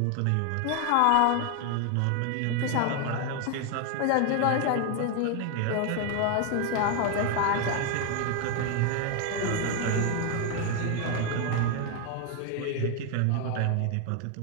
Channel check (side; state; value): both; different; correlation 0.00